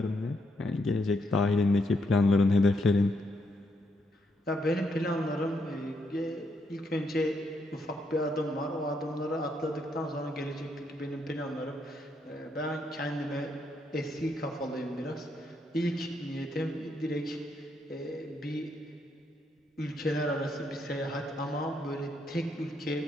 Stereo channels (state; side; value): normal; both; correlation 0.77